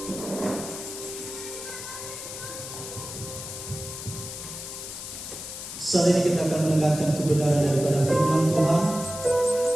Saat ini kita akan mendengarkan kebenaran daripada firman Tuhan.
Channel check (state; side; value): noise; left; hiss, 9 dB below the sound